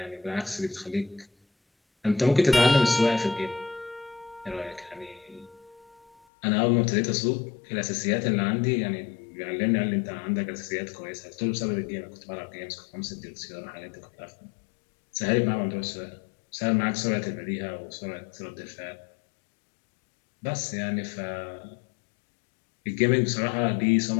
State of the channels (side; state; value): right; drops out; at 6.2 s